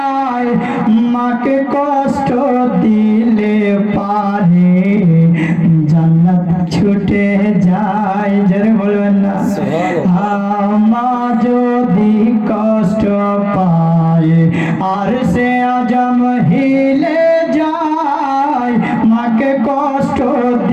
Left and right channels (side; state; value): both; identical; correlation 1.00